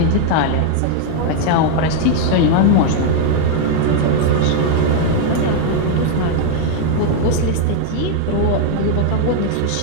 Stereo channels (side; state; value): both; different; correlation 0.00